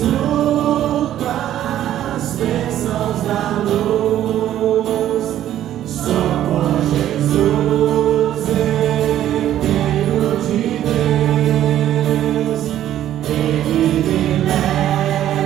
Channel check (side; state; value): left; quieter; 12.0 dB